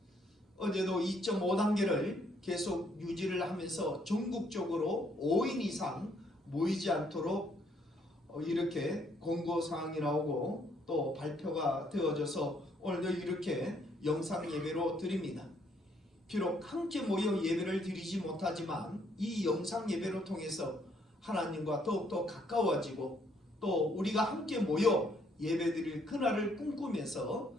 어제도 2.5단계를 계속 유지를 하면서 전국적으로 5인 이상 모이지 않도록 이렇게 공고사항이 나오고 또 발표가 되어져서 오늘도 이렇게 영상 예배로 드립니다. 비록 함께 모여 예배를 드리지 못하지만 이 영상 예배를 통해서 하나님과 더욱더 가까워지고 또 우리가 함께 모여 예배드릴 그날을 꿈꾸면서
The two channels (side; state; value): both; normal; correlation 0.69